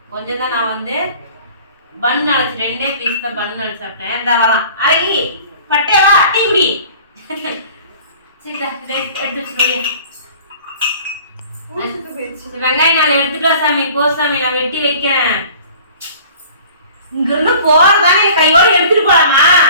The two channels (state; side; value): inverted; both; correlation -0.47